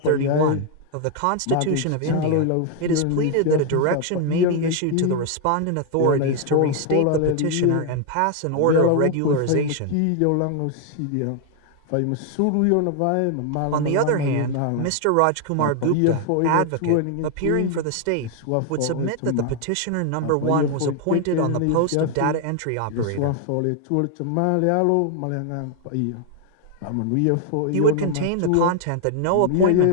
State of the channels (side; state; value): both; different; correlation 0.01